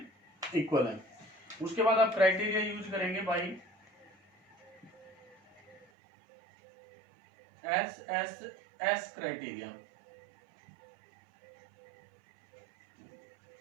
इक्वल है। उसके बाद आप क्राइटेरिया यूज करेंगे by S criteria.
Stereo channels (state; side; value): drops out; left; at 5.9 s